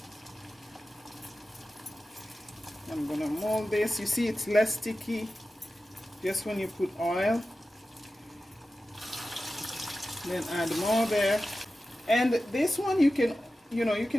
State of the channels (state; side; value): normal; both; correlation 0.94